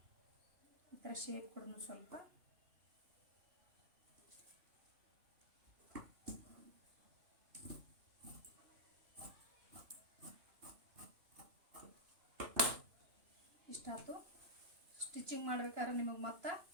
ಈ ಥರ ಶೇಪ್ ಕೊಡೋಣ ಸ್ವಲ್ಪ. ಇಷ್ಟಾಯ್ತು. ಸ್ಟಿಚಿಂಗ್ ಮಾಡ್ಬೇಕಾದ್ರೆ ನಿಮಗೆ ಮತ್ತೆ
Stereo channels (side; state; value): left; late; 2.9 ms